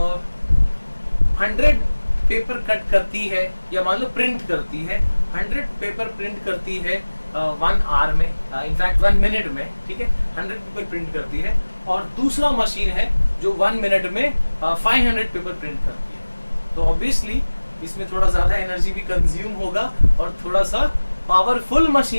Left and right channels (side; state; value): both; inverted; correlation -1.00